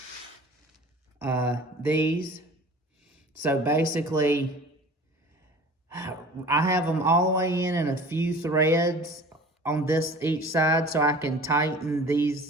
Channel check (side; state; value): both; normal; correlation 0.43